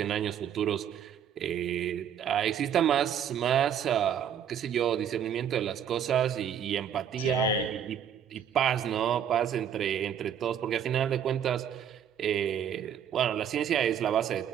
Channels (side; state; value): left; quieter; 8.7 dB